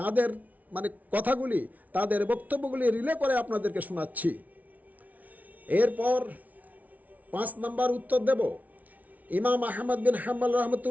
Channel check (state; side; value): late; left; 0.074 ms